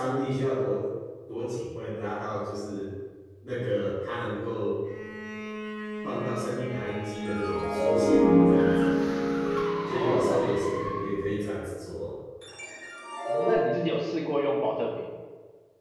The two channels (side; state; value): both; identical; correlation 1.00